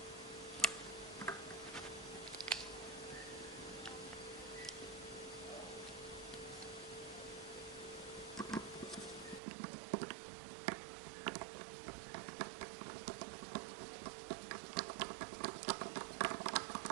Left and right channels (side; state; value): left; drops out; at 9.4 s